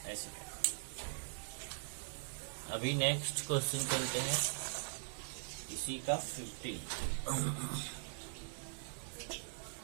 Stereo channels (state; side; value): silent; left; digital silence